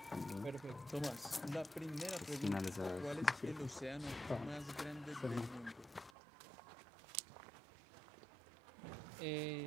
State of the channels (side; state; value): left; drops out; at 6.1 s